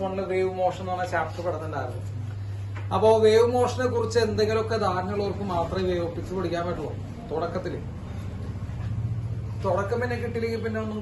വേവ് മോഷൻ എന്ന് പറഞ്ഞ ചാപ്റ്റർ പഠിച്ചിട്ടുണ്ടായിരുന്നു. അപ്പോ വേവ് മോഷനെ കുറിച്ച് എന്തെങ്കിലുമൊക്കെ ധാരണയുള്ളവർക്ക് മാത്രമേ വേവ് ഓപ്റ്റിക്സ് പഠിക്കാൻ പറ്റുള്ളൂ. തുടക്കം പിന്നെ കിട്ടിയില്ലെങ്കിൽ പിന്നെ ഒന്നും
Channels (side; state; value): both; identical; correlation 1.00